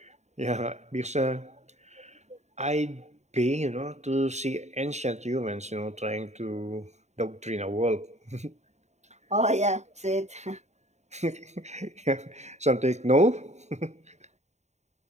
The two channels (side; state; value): left; late; 0.33 ms